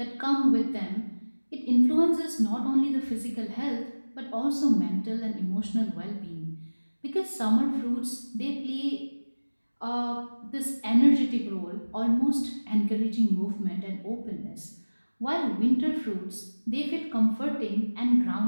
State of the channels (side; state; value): both; inverted; correlation -1.00